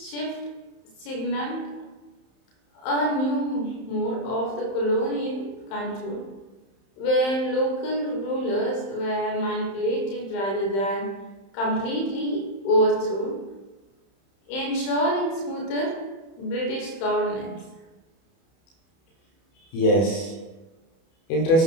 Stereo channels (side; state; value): right; late; 31 ms